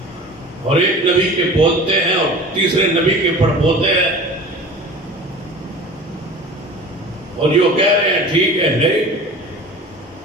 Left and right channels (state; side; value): normal; both; correlation 0.39